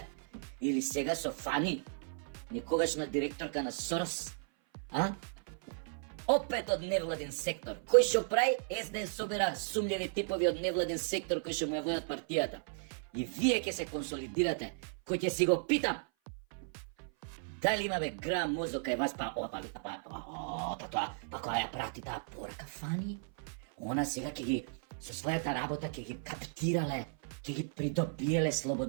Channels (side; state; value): left; silent; 54 dB below the other